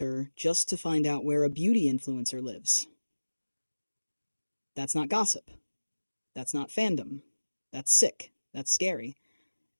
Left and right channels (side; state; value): both; inverted; correlation -1.00